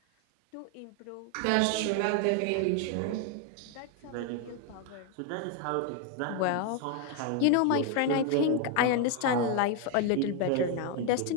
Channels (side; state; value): both; different; correlation 0.01